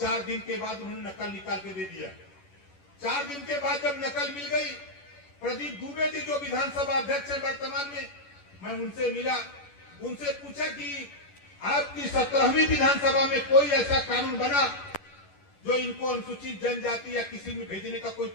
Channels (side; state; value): right; late; 11 ms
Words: दिन के बाद उन्होंने नकल निकाल के दे दिया। 4 दिन के बाद जब नकल मिल गई, प्रदीप दुबे जी जो विधानसभा अध्यक्ष है वर्तमान में, मैं उनसे मिला, उनसे पूछा कि आपकी 17वीं विधानसभा में कोई ऐसा कानून बना जो इनको अनुसूचित जनजाति या किसी में भेजने का कोई